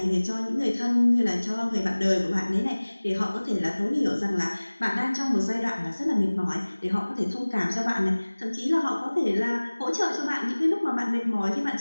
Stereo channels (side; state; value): both; inverted; correlation -1.00